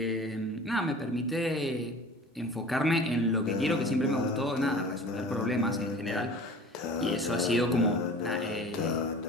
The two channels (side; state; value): both; normal; correlation 0.41